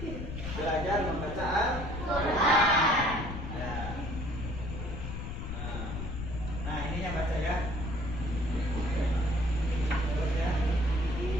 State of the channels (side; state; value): left; noise; rumble, 6 dB below the sound